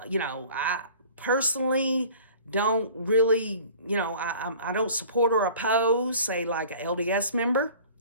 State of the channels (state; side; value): inverted; both; correlation -0.47